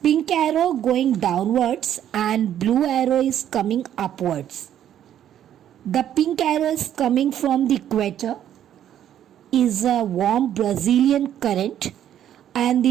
Pink arrow going downwards and blue arrow is coming upwards. The pink arrow is coming from the equator, is a warm Brazilian current, and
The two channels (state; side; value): quieter; left; 10.6 dB